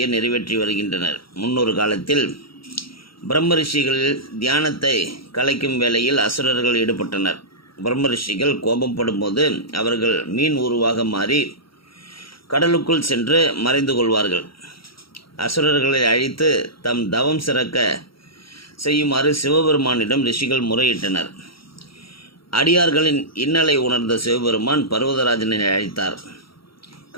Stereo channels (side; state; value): right; late; 0.75 ms